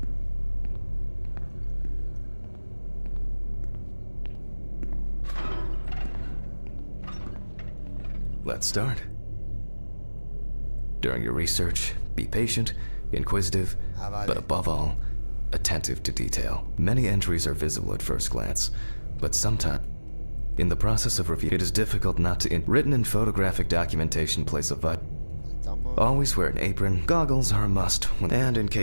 Let's start. During your research, be patient, inquisitive, Vale. but above all, attentive to detail. Many entries are visible at first glance, but sometimes, in the process of review, it is difficult not to. Written and photographic documentation plays a vital. Estamos. Always wear an apron. Goggles are a must, and in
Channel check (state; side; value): inverted; both; correlation -1.00